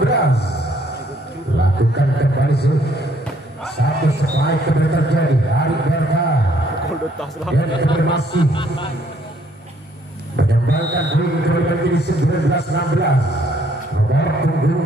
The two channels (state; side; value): normal; both; correlation 0.66